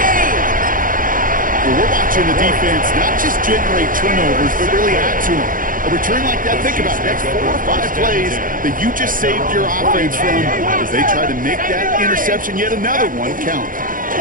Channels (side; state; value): left; late; 0.40 ms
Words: Well, we're watching the defense not just generate turnovers, but really add to them. A return like that, think about it, that's 4 or 5 plays that you just saved your offense from as they try to make that interception, yet another one, count.